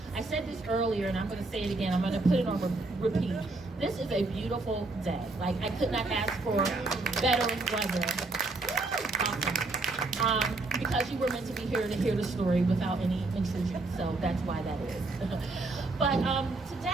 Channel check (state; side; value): quieter; left; 3.2 dB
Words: I said this earlier, and I'm going to say it again. I'm going to put it on repeat. This is a beautiful day. Like, I could not ask for better weather. Awesome. Because you were meant to be here to hear the story without any intrusion, so that's why that is. But